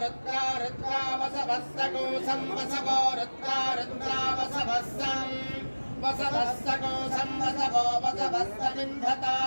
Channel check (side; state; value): both; inverted; correlation -1.00